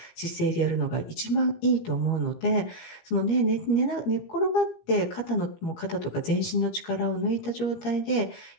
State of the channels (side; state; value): right; late; 17 ms